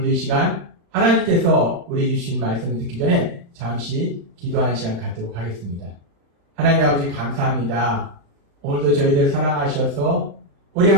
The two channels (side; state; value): left; late; 35 ms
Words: 이 시간 하나님께서 우리에게 주신 말씀을 듣기 전에 잠시 기도하는 시간 갖도록 하겠습니다. 하나님 아버지 감사합니다. 오늘도 저희들 사랑하셔서 우리